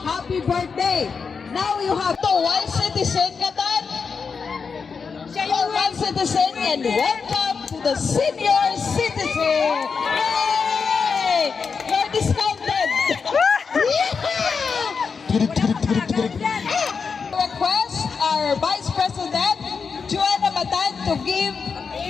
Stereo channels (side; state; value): right; quieter; 5.5 dB